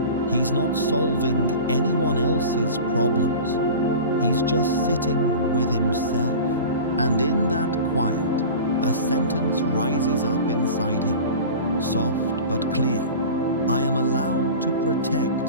He's not solving anyone else's problems. He's just sitting with himself. And in that quiet, a sentence rises up inside him, soft but clear. I am allowed to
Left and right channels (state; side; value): inverted; both; correlation -0.35